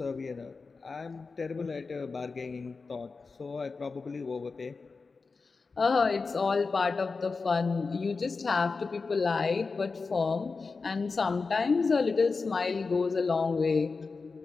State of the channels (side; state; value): right; quieter; 4.4 dB